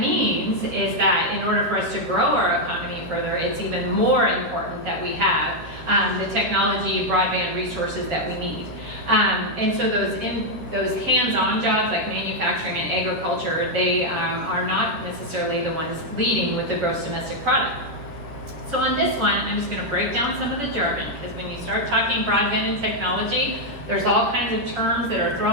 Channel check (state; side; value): late; left; 13 ms